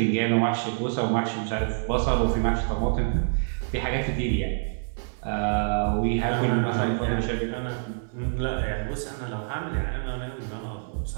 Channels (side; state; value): left; silent; 59 dB below the other